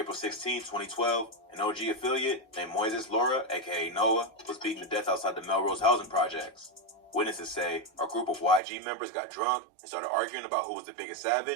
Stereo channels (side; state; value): left; drops out; at 8.6 s